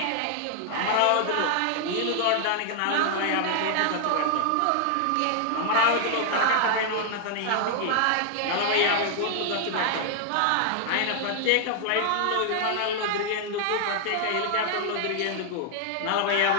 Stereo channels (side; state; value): both; different; correlation 0.00